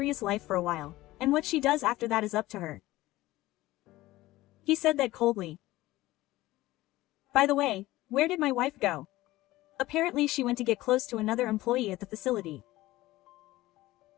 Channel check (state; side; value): quieter; right; 17.5 dB